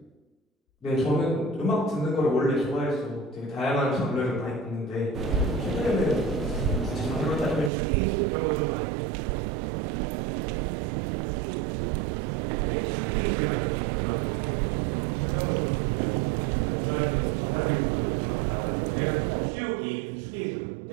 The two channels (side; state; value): left; drops out; at 7.7 s